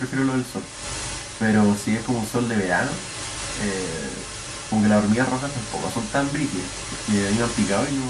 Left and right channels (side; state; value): both; identical; correlation 1.00